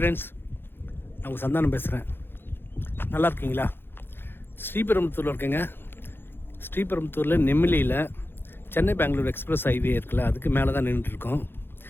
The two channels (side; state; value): right; late; 0.10 ms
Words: நான் உங்கள் சந்தானம் பேசுகிறேன். நல்லா இருக்கீங்களா? ஸ்ரீபெரும்புத்தூரில் இருக்கேங்க. ஸ்ரீபெரும்புத்தூரில் நெம்மிலியில் சென்னை பெங்களூர் எக்ஸ்பிரஸ் ஹைவே இருக்குல்ல, அதுக்கு மேலே தான் நின்றுட்டுருக்கோம்.